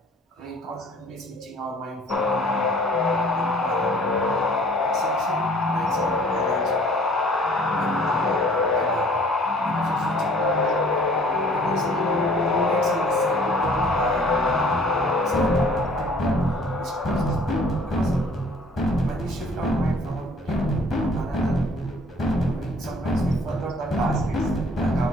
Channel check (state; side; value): normal; both; correlation 0.54